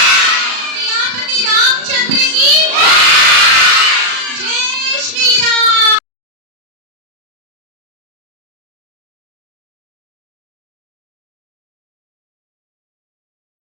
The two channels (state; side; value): late; left; 37 ms